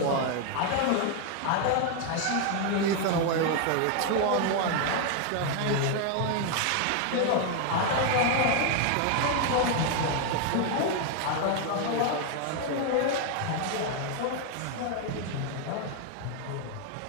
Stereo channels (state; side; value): different; both; correlation 0.01